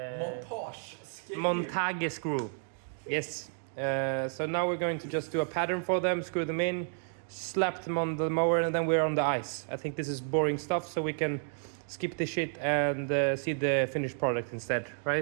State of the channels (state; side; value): silent; left; 57 dB below the other